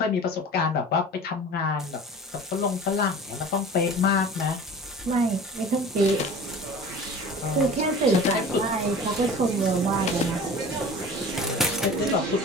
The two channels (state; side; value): normal; both; correlation 0.40